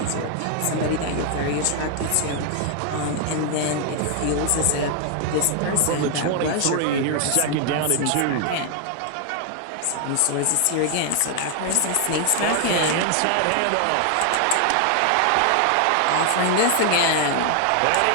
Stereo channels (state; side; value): different; both; correlation 0.00